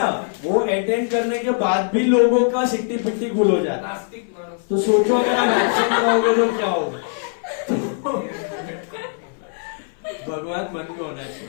वो अटेंड करने के बाद भी लोगों का सिट्टी पिट्टी गुल हो जाता है नास्तिक मानस तो सोचो अगर आप एक्शन कराओगे तो क्या होगा भगवान मन में होना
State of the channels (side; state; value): right; silent; 65 dB below the other